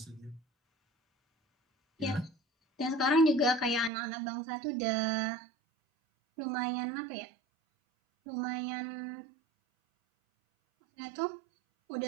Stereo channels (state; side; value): drops out; left; at 3.9 s